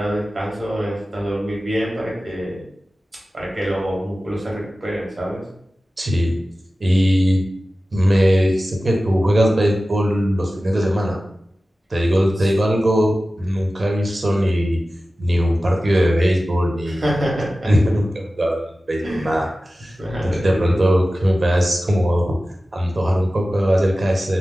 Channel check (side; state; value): both; normal; correlation 0.95